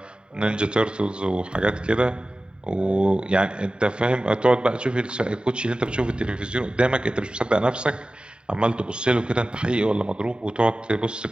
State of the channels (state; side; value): late; left; 0.050 ms